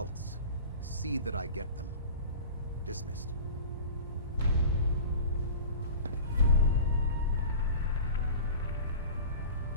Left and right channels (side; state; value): both; inverted; correlation -0.38